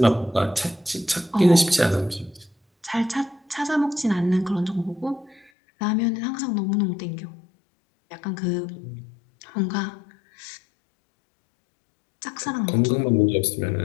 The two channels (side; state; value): right; drops out; at 5.5 s